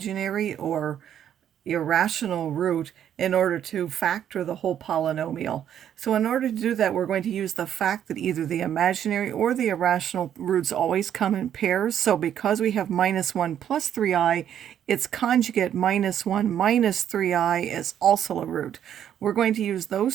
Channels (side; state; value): left; quieter; 9.9 dB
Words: or irrational root in order to factor the whole polynomial. So in order to do that, we're going to use the fact that either the imaginary or the irrational roots always come in pairs. So because we have minus 1 plus 3i, its conjugate minus 1 minus 3i is also a root. We're going to use